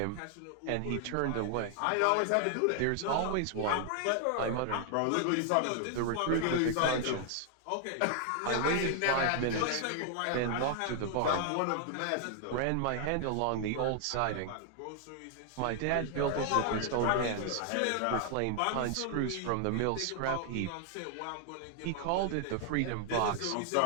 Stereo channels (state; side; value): different; both; correlation 0.00